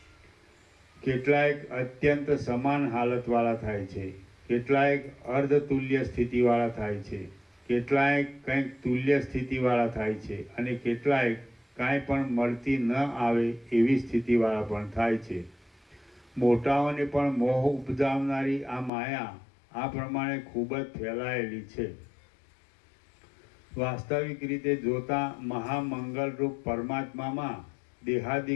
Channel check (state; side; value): drops out; right; at 18.9 s